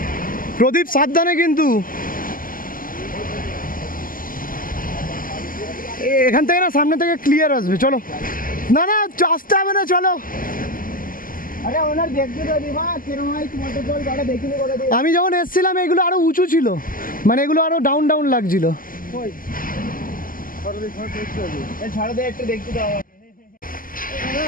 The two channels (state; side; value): late; right; 0.41 ms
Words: প্রদীপ সাবধানে কিন্তু, এখান থেকে না সামনে থেকে ক্লিয়ার আসবে। চলো না না আসতে হবে না, চলো। अरे ओनर देखते तो दिवा किरमाई वाटरफॉल गाड़ा देखने को दे আমি যখন এসেছিলাম এগুলো আরো উঁচু ছিল, মানে এগুলো আরো ডাউন ডাউন লাগছিল। कोई ये ছাড় দে একটু দেখতে দাও